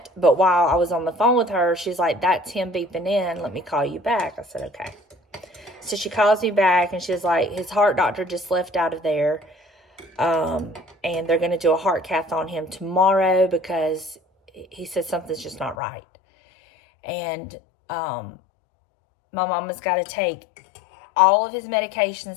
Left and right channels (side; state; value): right; drops out; at 15.8 s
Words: But while I was on the phone with her, she's like, that's him beeping in. Let me call you back. I said, okay. So she calls me back, and she's like, his heart doctor just left out of there. And they're going to do a heart cath on him tomorrow because he says something's just not right. And my mama's got to take all of his